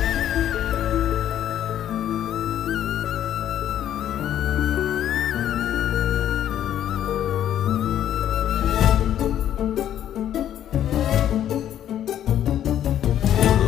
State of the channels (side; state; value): right; quieter; 10.9 dB